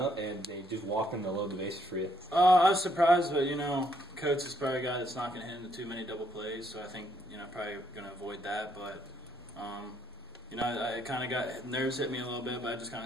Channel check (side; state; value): both; normal; correlation 0.72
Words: up and they just walked in to load the bases for you? I was surprised, but Coates is probably a guy that's not going to hit into too many double plays, so I think probably going to avoid that. But I kind of got nerves hit me a little bit, but I just kind